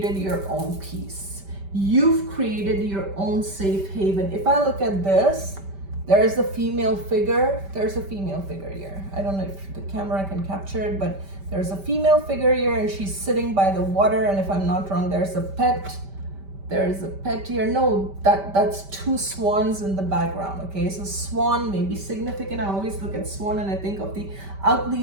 your own peace. You've created your own safe haven. If I look at this, there is a female figure. There's a female figure here. I don't know if the camera can capture it, but there's a female figure here, and she's sitting by the water. And if I'm not wrong, there's a pet. There's a pet here. No, that's 2 swans in the background, okay? So swan may be significant. I always look at swan and I think of the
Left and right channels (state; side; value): late; left; 5.1 ms